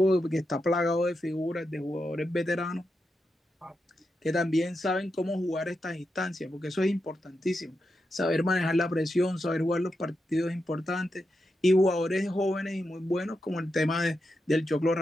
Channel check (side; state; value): both; normal; correlation 0.87